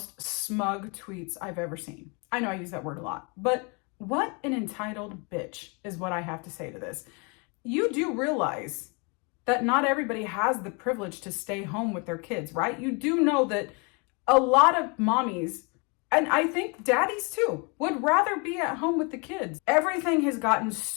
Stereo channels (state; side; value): quieter; right; 32.2 dB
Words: smug tweets I've ever seen. I know I use that word a lot, but what an entitled bitch is what I have to say to this. You do realize that not everybody has the privilege to stay home with their kids, right? You do know that a lot of mommies, and I think daddies too, would rather be at home with the kids. Everything has gotten